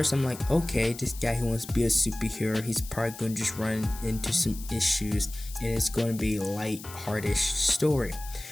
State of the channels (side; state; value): left; noise; hiss, 15 dB below the sound